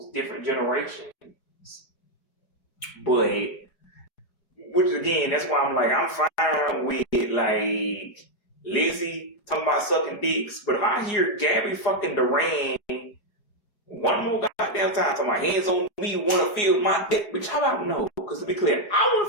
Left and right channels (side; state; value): right; late; 4.9 ms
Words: different generations. But, which again, that's why I'm like, I'm fine with like Lizzie talking about sucking dicks. But if I hear Gabby fucking Duran one more goddamn time talking about hands on me, wanna feel my dick, bitch, how about no? Because to be clear, I